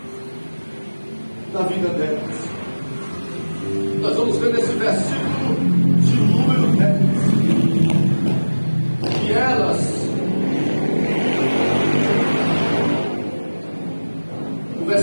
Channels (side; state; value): both; inverted; correlation -1.00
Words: na vida delas. Nós vamos ver nesse versículo de número 10 que elas, o